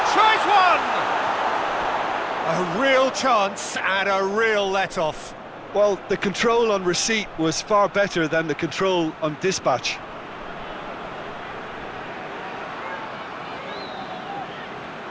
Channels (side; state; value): both; identical; correlation 1.00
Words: tries one! A real chance and a real let-off. Well, the control on receipt was far better than the control on dispatch.